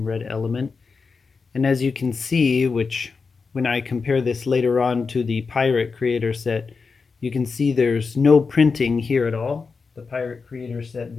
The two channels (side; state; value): right; quieter; 4.8 dB